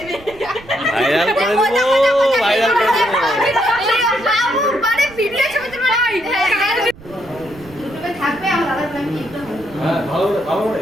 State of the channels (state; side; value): noise; right; rumble, 21 dB below the sound